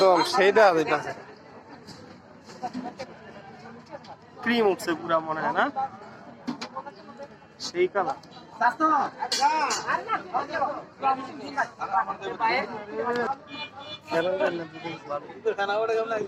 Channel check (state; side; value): identical; both; correlation 1.00